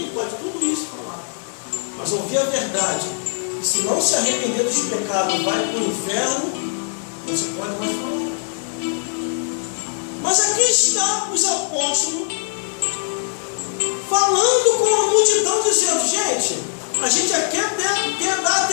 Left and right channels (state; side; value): silent; right; digital silence